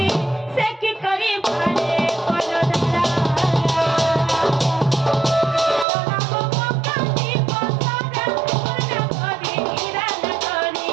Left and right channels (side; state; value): left; drops out; at 5.9 s